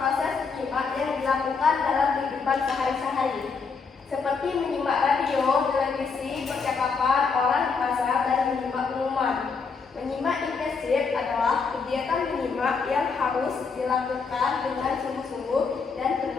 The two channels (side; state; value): right; quieter; 5.1 dB